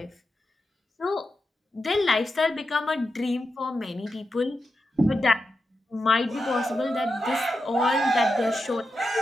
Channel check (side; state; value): both; normal; correlation 0.88